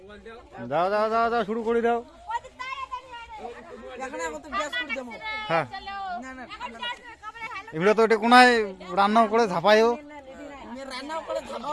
দাও দাও দাও দাও দাও শুরু করে দাও। প্রদীপ তাড়াতাড়ি এখন এখন তো ব্যাস করে দেবো। হ্যাঁ না না এমনি তো এটা কোনায় রান্নাও করে ঝাপাইও, আমি রান্নাও করে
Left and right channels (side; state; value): both; identical; correlation 1.00